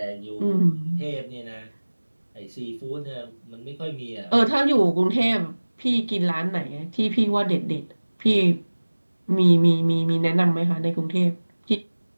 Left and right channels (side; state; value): both; inverted; correlation -1.00